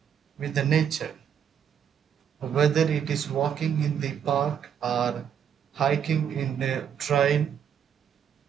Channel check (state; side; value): quieter; left; 8.3 dB